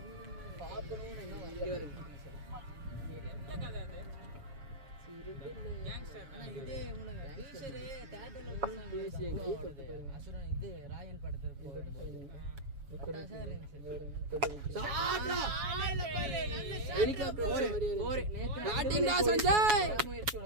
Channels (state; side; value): late; left; 7.0 ms